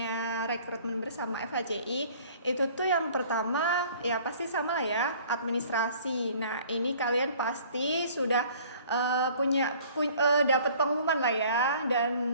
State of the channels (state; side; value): inverted; both; correlation -0.52